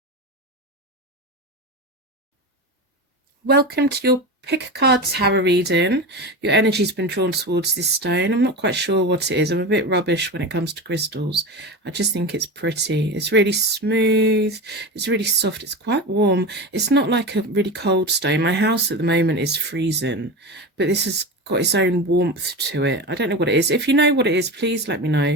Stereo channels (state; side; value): normal; both; correlation 0.25